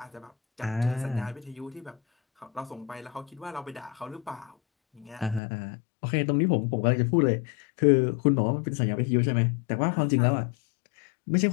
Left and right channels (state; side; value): drops out; right; at 5.4 s